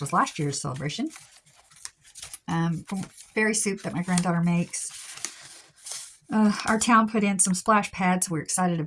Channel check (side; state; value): both; identical; correlation 1.00